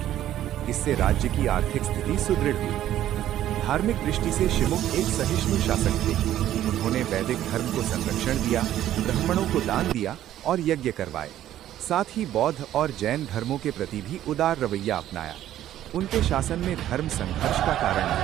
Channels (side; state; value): left; quieter; 12.4 dB